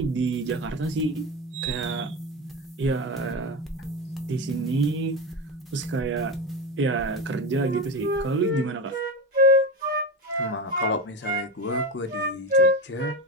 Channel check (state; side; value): normal; both; correlation 0.19